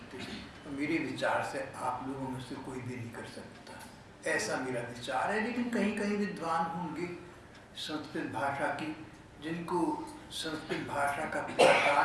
मेरे विचार से आप लोगों में से कोई भी नहीं कर सकता, ऐसा मेरा विचार है। लेकिन कहीं कहीं विद्वान होंगे संस्कृत भाषा की, जिनको संस्कृत भाषा का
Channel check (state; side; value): identical; both; correlation 1.00